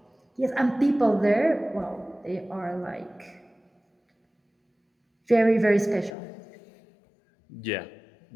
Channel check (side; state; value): right; drops out; at 6.2 s